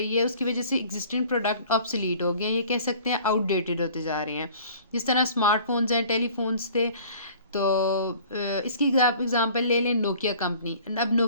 है उसकी वजह से एग्जिस्टिंग प्रोडक्ट ऑब्सोलीट हो गए हैं, ये कह सकते हैं आउटडेटेड होते जा रहे हैं। जिस तरह स्मार्टफोन्स हैं, टेलीफोन्स थे, तो इसकी आप एग्जांपल ले लें नोकिया कंपनी। अब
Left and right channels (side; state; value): both; inverted; correlation -0.50